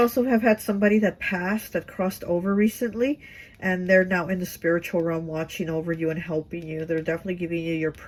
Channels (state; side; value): identical; both; correlation 1.00